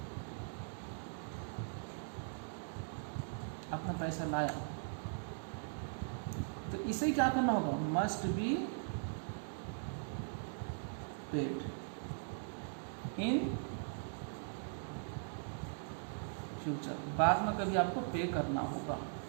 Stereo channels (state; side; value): silent; left; digital silence